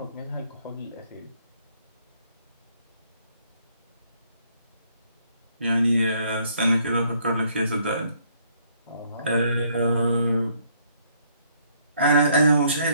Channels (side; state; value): both; inverted; correlation -0.66